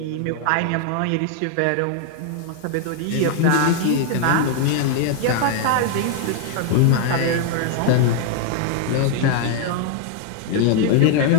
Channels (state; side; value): different; both; correlation 0.00